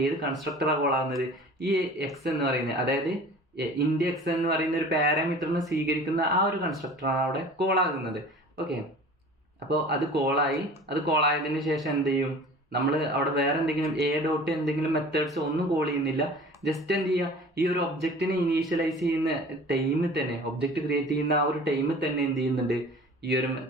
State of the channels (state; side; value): normal; both; correlation 0.43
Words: ഏത് കൺസ്ട്രക്ടറാണ് കോൾ ആവുന്നത്, ഈ എക്സ് എന്ന് പറയുന്നത്, അതായത് ഇൻഡ് എക്സ് എന്ന് പറയുന്ന ഒരു പാരാമീറ്ററിനെ സ്വീകരിക്കുന്ന ആ ഒരു കൺസ്ട്രക്ടറാണ് അവിടെ കോൾ ആകുന്നത്. ഓക്കെ, അപ്പോൾ അത് കോളായതിനു ശേഷം എന്ത് ചെയ്യും, നമ്മൾ അവിടെ വേറെ എന്തെങ്കിലും എ ഡോട്ട് എന്തെങ്കിലും മെത്തേഡ്സ് ഒന്നും കോൾ ചെയ്യുന്നില്ല. ജസ്റ്റ് എന്ത് ചെയ്യുക, ഈ ഒരു ഒബ്ജക്റ്റിനെ ഇനീഷ്യലൈസ് ചെയ്യുന്ന ടൈമിൽ തന്നെ, ഒബ്ജക്റ്റ് ക്രിയേറ്റ് ചെയ്യുന്ന ആ ഒരു ടൈമിൽ തന്നെ എന്ത് ചെയ്യുന്നുണ്ട്, ഈ ഒരു